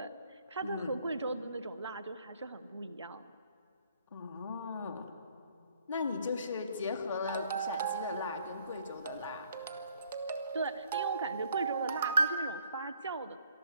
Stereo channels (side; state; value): both; inverted; correlation -0.64